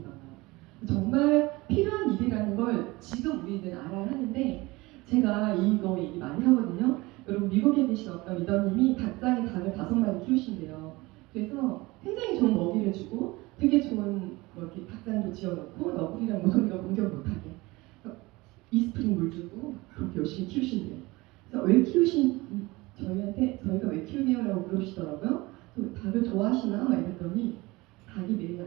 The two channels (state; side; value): quieter; left; 21.9 dB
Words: 정말 필요한 일이라는 걸 지금 우리는 알아야 하는데 제가 이거 얘기 많이 하거든요. 여러분 미국에 계신 어떤 리더님이 닭장에 닭을 5마리 키우신대요. 그래서 굉장히 좋은 먹이를 주고 되게 좋은 이렇게 닭장도 지어놓고 너구리랑 모서리가 공격 못하게 이스프링 물 주고 그렇게 열심히 키우신대요. 그래서 왜 저희가 왜 키우냐고 물으시더라고요. 닭을 좋아하시나? 막 이랬더니 닭이 매일